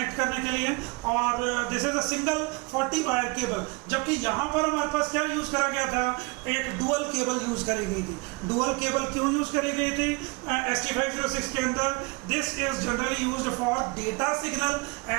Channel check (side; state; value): left; quieter; 27.8 dB